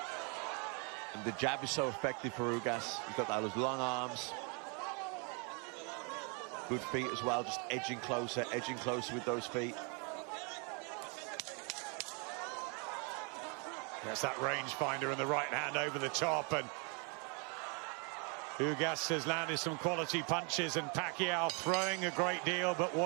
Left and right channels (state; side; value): quieter; left; 35.3 dB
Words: And the jab is so effective for Ugas. He's got those long arms. Good feet as well, just edging closer with those feet. There's that rangefinder and the right hand over the top, and Ugas has landed some quality punches, and Pacquiao throwing a great deal, but